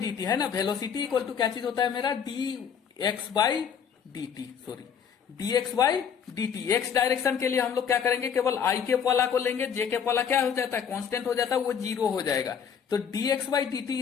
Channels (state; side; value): quieter; right; 7.5 dB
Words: T है ना, वेलोसिटी इक्वल टू क्या चीज होता है मेरा, D X by D T, sorry D X by D T. X direction के लिए हम लोग क्या करेंगे, केवल आई कैप वाला को लेंगे, जे कैप वाला क्या हो जाता है, कांस्टेंट हो जाता है, वो जीरो हो जाएगा। तो D X by D